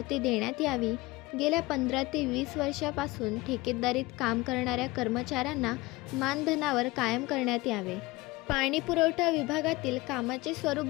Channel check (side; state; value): right; quieter; 21.3 dB